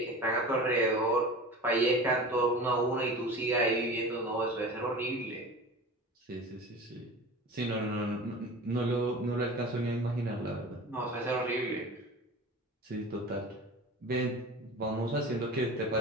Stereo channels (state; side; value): normal; both; correlation 0.35